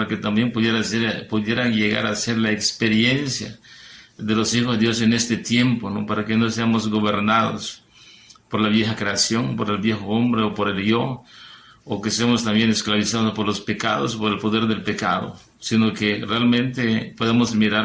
que también pudieran llegar a ser la experiencia de los hijos de Dios en este tiempo, ¿no? Para que no seamos gobernados por la vieja creación, por el viejo hombre o por el yo, o que seamos también esclavizados por los pecados, por el poder del pecado, sino que realmente podemos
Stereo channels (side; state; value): both; identical; correlation 1.00